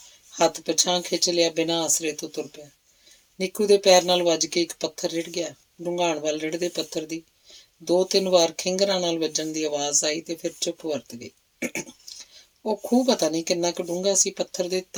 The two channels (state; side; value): identical; both; correlation 1.00